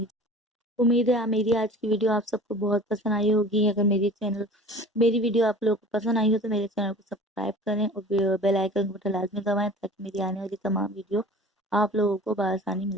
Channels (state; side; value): normal; both; correlation 0.42